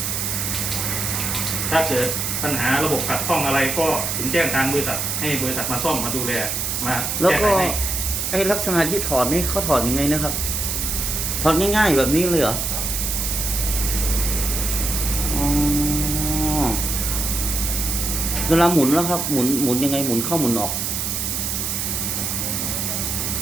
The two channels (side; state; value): right; noise; hiss, 1 dB below the sound